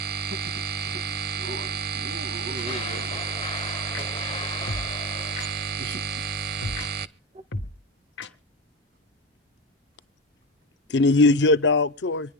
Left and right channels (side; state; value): both; normal; correlation 0.21